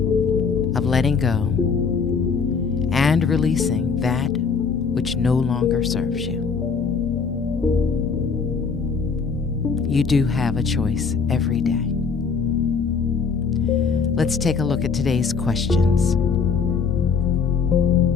of letting go and releasing that which no longer serves you. You do have a choice every day. Let's take a look at today's questions.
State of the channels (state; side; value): quieter; right; 5.4 dB